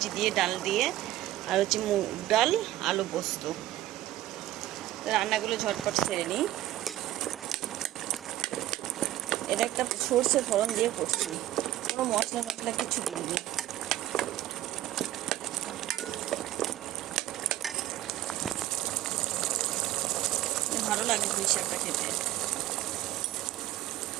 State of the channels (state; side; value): quieter; left; 14.5 dB